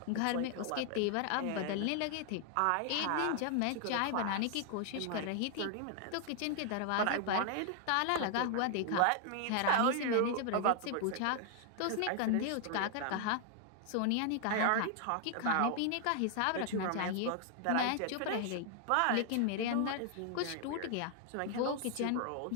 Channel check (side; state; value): both; different; correlation 0.00